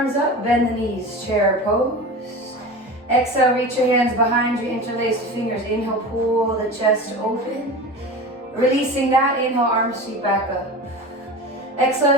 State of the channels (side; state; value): both; normal; correlation 0.31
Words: up, bend the knees, chair pose. Exhale, reach your hands behind you, interlace the fingers. Inhale, pull the chest open. Releasing that, inhale, arms sweep back up. Exhale,